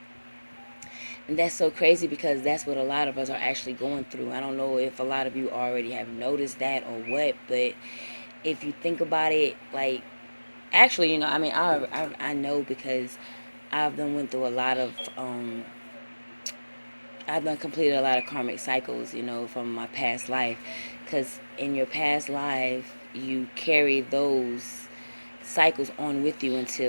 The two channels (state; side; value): inverted; both; correlation -1.00